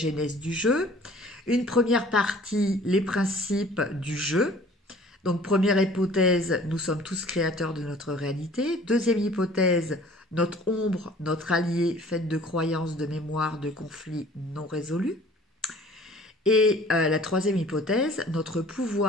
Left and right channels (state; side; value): normal; both; correlation 0.51